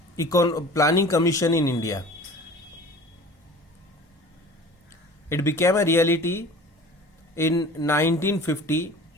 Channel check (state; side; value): normal; both; correlation 0.43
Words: Planning Commission in India. It became a reality in 1950